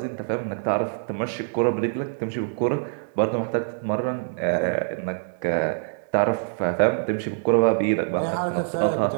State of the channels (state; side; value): silent; left; digital silence